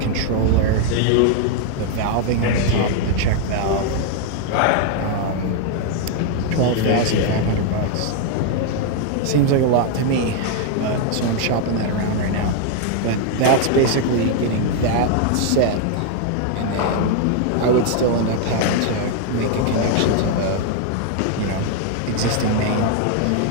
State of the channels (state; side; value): different; both; correlation 0.00